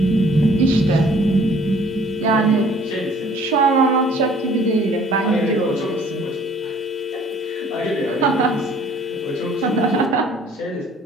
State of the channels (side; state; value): both; normal; correlation 0.55